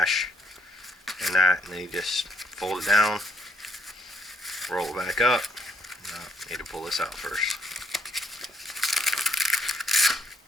and that, and then you just fold it down, roll it back up. No, need to pull this out first.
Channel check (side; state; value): both; normal; correlation 0.72